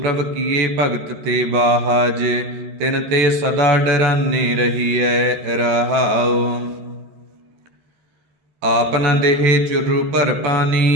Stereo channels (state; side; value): late; left; 14 ms